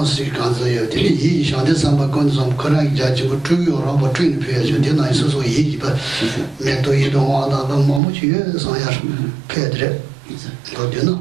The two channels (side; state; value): left; drops out; at 8.0 s